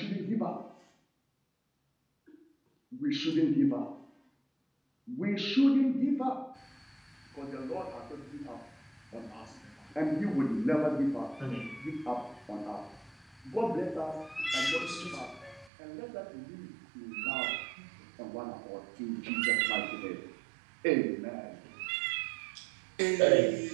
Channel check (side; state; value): left; drops out; at 15.7 s